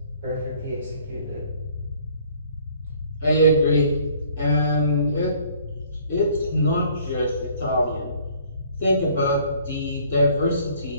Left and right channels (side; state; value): both; inverted; correlation -0.58